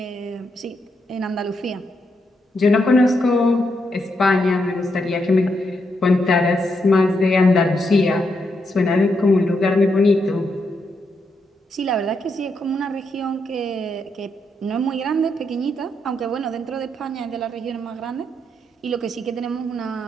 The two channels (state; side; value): normal; both; correlation 0.80